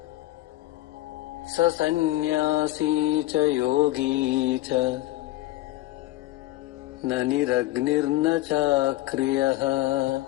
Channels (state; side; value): quieter; right; 16.7 dB